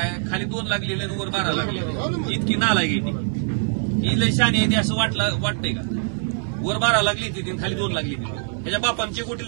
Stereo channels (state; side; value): silent; left; 56 dB below the other